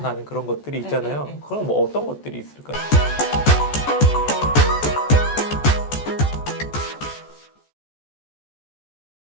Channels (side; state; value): right; late; 14 ms